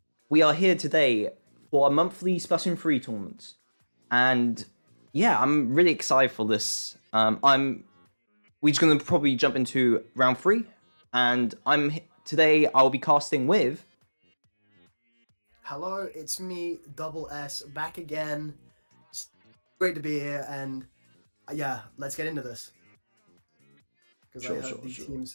We are here today for a monthly Splatoon 3 tournament. And yeah, I'm really excited for this. We're just going to probably jump into round 3. And today I'll be casting with... Hello, it's me, Double S, back again. It's great to be here, and yeah, let's get into this. Because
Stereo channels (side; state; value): both; inverted; correlation -1.00